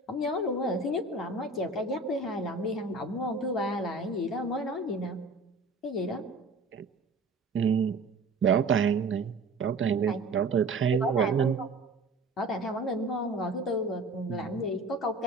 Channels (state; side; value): quieter; left; 3.4 dB